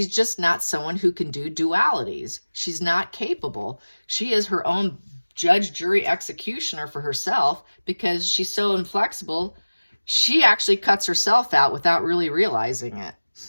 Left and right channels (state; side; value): inverted; both; correlation -1.00